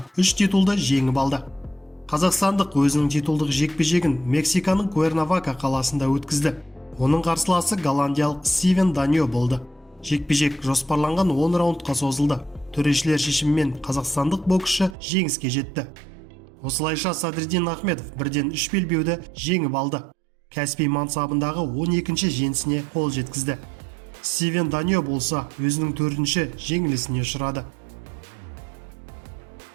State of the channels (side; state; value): left; drops out; at 15.0 s